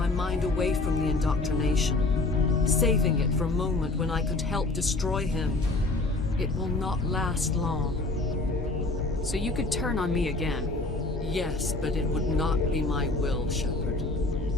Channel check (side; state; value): right; quieter; 3.1 dB